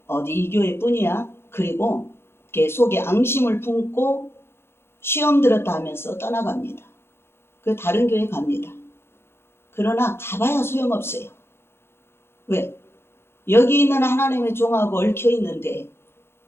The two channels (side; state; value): right; late; 0.12 ms